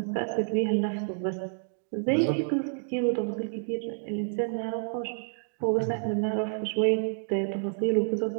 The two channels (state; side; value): silent; left; digital silence